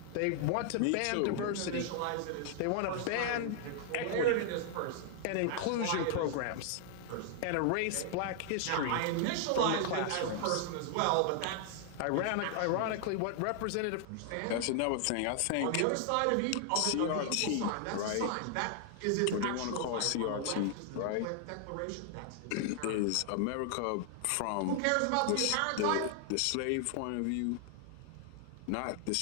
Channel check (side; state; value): both; different; correlation 0.00